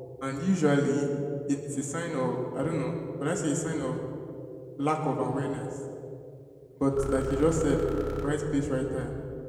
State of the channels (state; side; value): identical; both; correlation 1.00